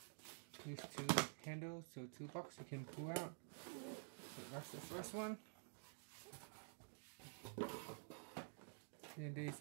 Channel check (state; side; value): silent; left; digital silence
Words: these 2 handles, so 2 boxes you can pull out. So that's the first one. Then there's